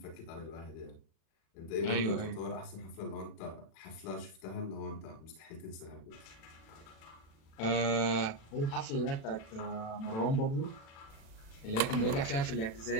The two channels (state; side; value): late; right; 36 ms